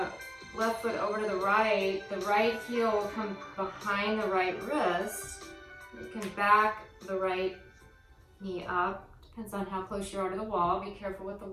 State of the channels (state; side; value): identical; both; correlation 1.00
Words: left foot over to the right heel will come behind the right wrist. You can back the right knee up. Depends on how close you are to the wall. Be careful with the